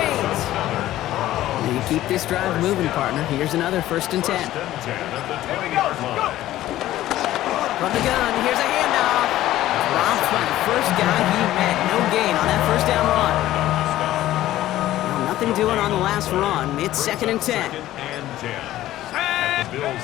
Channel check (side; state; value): right; quieter; 14.5 dB